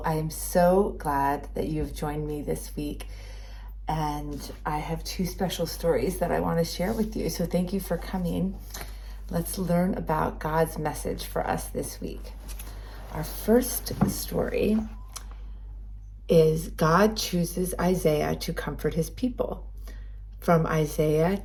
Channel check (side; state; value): both; identical; correlation 1.00